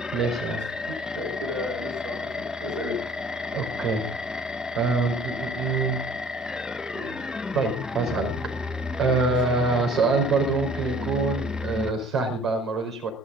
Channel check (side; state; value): both; normal; correlation 0.53